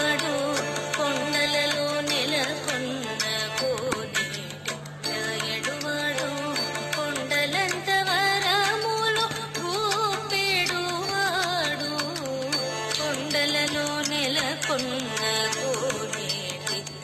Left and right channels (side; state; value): both; identical; correlation 1.00